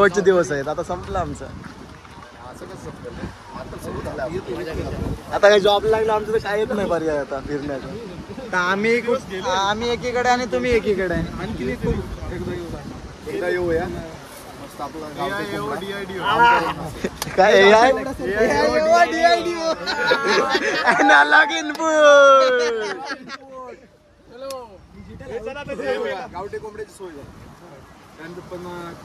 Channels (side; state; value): both; identical; correlation 1.00